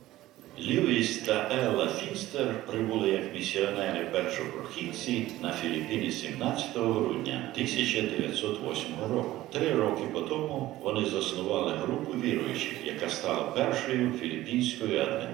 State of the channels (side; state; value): left; quieter; 15.9 dB